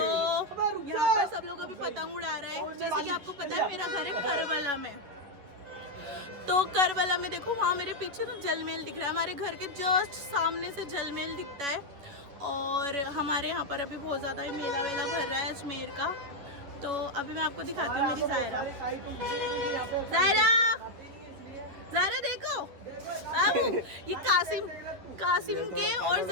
यहाँ पर सब लोग अभी पतंग उड़ा रहे हैं। जैसे कि आपको पता है मेरा घर है करबला में, तो करबला में देखो वहाँ मेरे पीछे ना जलमेल दिख रहा है, हमारे घर के जस्ट सामने से जलमेल दिखता है। और हमारे यहाँ पर अभी बहुत ज़्यादा ही मेला वेला भर रहा है अजमेर का। तो अभी मैं आपको दिखाती हूँ मेरी ज़ायरा। ज़ायरा देखो बाबू, ये कासिम के और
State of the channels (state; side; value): late; left; 11 ms